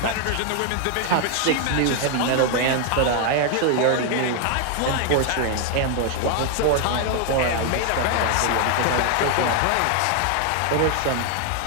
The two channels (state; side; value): different; both; correlation 0.00